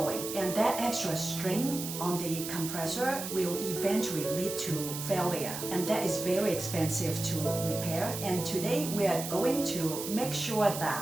And that extra strain on the compressor will eventually lead to failure, and that is very expensive to repair. And today we are going to make sure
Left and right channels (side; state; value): right; noise; hiss, 7 dB below the sound